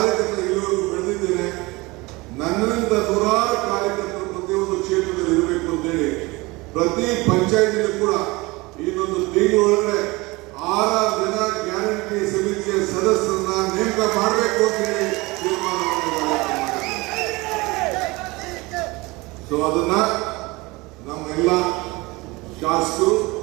ಇಲ್ಲಿವರೆಗೂ ಬೆಳೆದಿದ್ದೇನೆ. ನನ್ನಿಂದ ನೂರಾರು ಕಾರ್ಯಕರ್ತರು ಪ್ರತಿಯೊಂದು ಕ್ಷೇತ್ರದಲ್ಲಿ ಇರಬೇಕು ಅಂತೇಳಿ ಪ್ರತಿ ಪಂಚಾಯತಿಗೂ ಕೂಡ ಇನ್ನೊಂದು ತಿಂಗಳೊಳಗಡೆ 6 ಜನ ಗ್ಯಾರಂಟಿ ಸಮಿತಿಯ ಸದಸ್ಯರನ್ನ ನೇಮಕ ಮಾಡಬೇಕು ಅಂತ ಹೇಳಿ ತೀರ್ಮಾನ ಮಾಡಿದ್ದಾರೆ. ಸೊ ಅದನ್ನ ನಮ್ಮೆಲ್ಲ ಶಾಸಕರು,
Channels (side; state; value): left; quieter; 23.2 dB